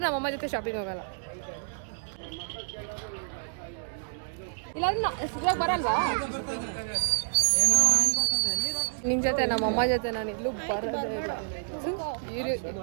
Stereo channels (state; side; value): silent; left; digital silence